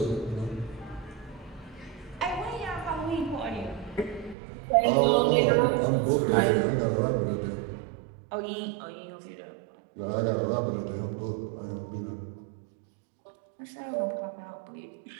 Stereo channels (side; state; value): left; drops out; at 4.4 s